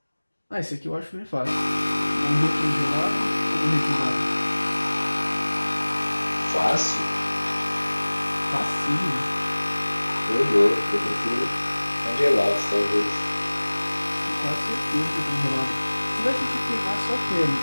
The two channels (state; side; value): inverted; both; correlation -1.00